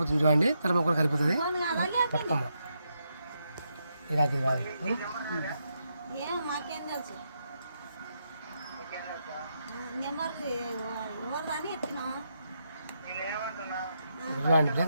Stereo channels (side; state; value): both; inverted; correlation -0.82